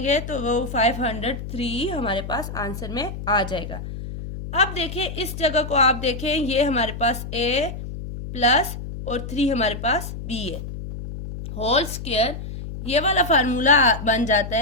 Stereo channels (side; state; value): left; noise; hum, 8 dB below the sound